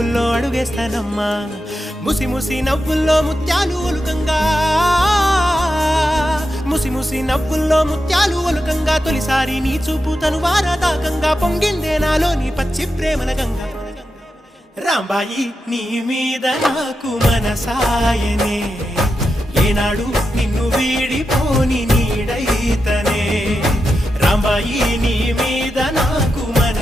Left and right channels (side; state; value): both; normal; correlation 0.88